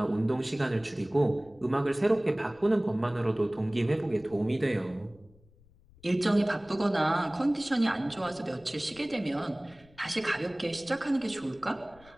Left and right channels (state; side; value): noise; left; rumble, 27 dB below the sound